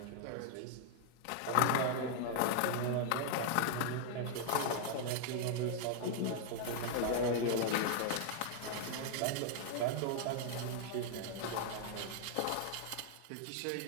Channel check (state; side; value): different; both; correlation 0.00